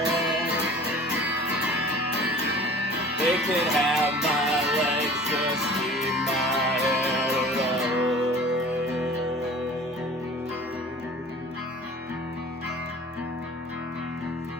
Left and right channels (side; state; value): both; normal; correlation 0.44